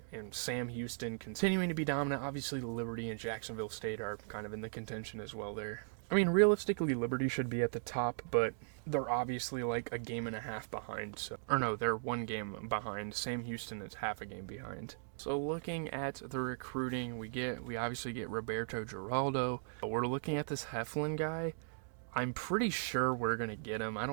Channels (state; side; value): silent; left; digital silence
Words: and Sam Houston continuing to be dominant. Obviously, Liberty and Jacksonville State are kind of in the contention as well there. I mean, realistically, Liberty should be at the top, but they're obviously like a game and a half behind. Or no, they're 1 game behind. Sam Houston is half a game behind. So looking at the recruiting, we obviously get Roberto Giraldo. We're looking at this Heflin guy. I'm pretty sure we're going to get him. I